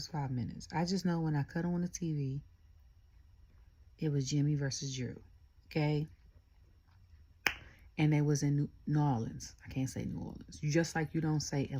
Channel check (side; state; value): both; identical; correlation 1.00